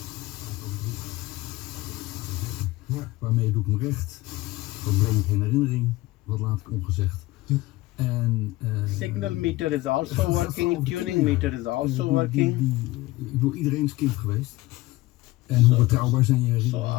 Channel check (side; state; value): right; quieter; 19.2 dB